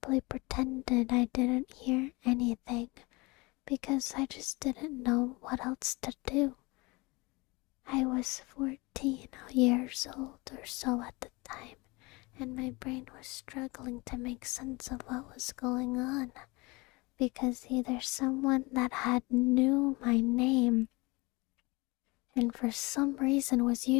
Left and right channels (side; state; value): right; quieter; 24.9 dB